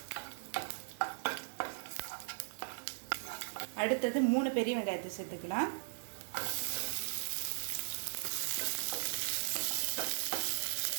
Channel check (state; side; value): silent; left; 52 dB below the other